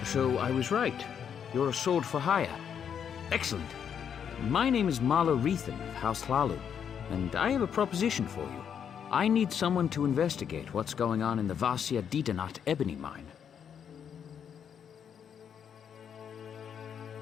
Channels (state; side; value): quieter; right; 8.0 dB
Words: So I was right. You're a sword for hire. Excellent. My name is Marla Reethan of House Hlalu, and I have a proposition for you. I need someone to investigate what's going on in the Vasia Didanat ebony mine.